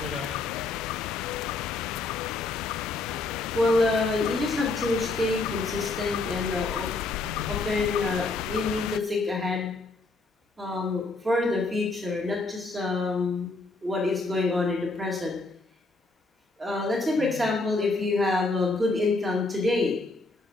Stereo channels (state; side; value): quieter; right; 3.4 dB